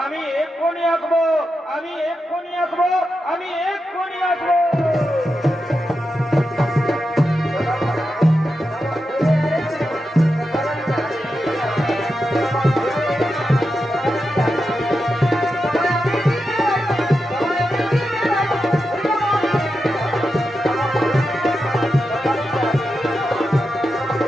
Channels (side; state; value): both; normal; correlation 0.88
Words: আমি এক্ষুনি আসবো আমি এক্ষুনি আসবো আমি এক্ষুনি আসবো